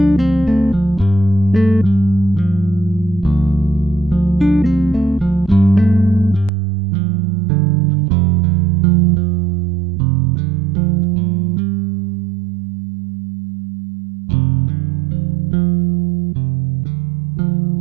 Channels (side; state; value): left; drops out; at 6.5 s